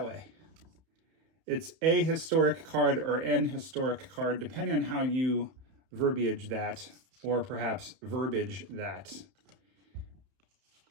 way. It's a historic card or an historic card, depending on how you verbiage that, or perhaps verbiage that.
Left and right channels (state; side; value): late; left; 31 ms